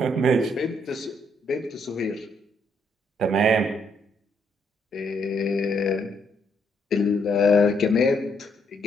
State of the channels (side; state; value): both; normal; correlation 0.73